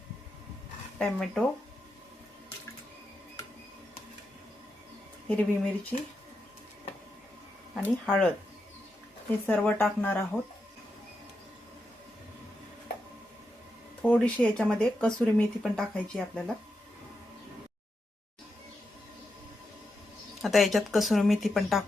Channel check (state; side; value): normal; both; correlation 0.86